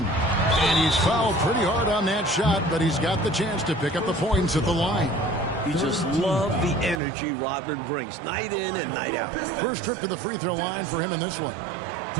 And he's fouled pretty hard on that shot, but he's got the chance to pick up the points at the line. You just love the energy Rodman brings, night in and night out. First trip to the free throw line for him in this one.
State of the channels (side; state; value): left; drops out; at 7.0 s